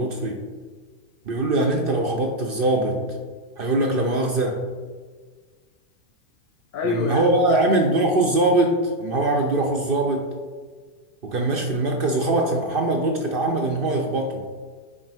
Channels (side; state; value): left; late; 2.6 ms